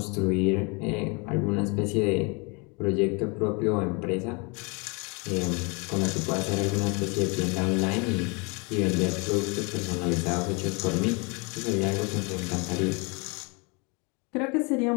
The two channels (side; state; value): right; quieter; 30.8 dB